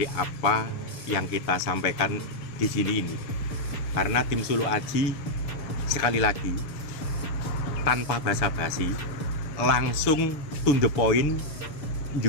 apa yang kita sampaikan di sini ini. Karena tim Sulu Aji sekali lagi tanpa basa-basi langsung to the point,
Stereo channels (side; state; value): right; late; 6.9 ms